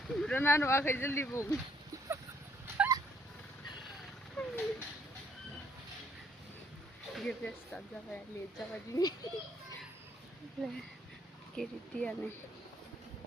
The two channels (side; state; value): both; normal; correlation 0.66